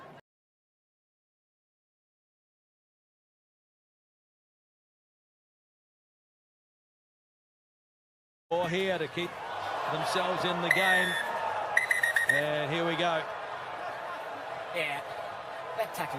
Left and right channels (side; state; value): both; identical; correlation 1.00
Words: Or here to keep themselves in the game. And here we go. Yeah, that